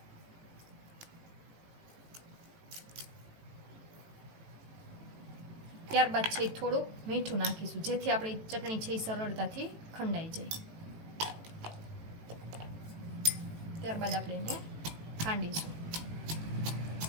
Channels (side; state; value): left; late; 18 ms